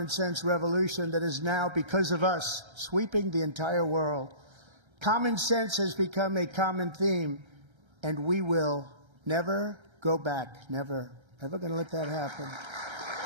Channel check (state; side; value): late; left; 1.3 ms